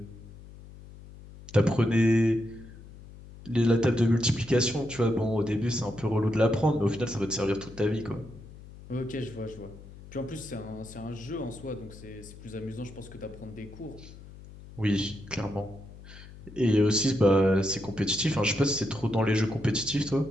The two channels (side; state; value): left; noise; hum, 17 dB below the sound